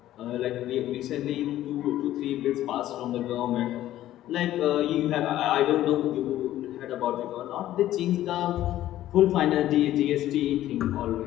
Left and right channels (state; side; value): quieter; right; 13.6 dB